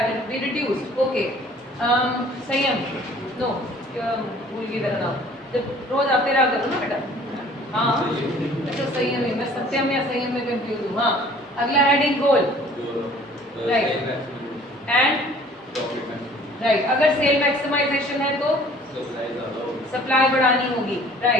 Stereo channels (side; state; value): both; normal; correlation 0.52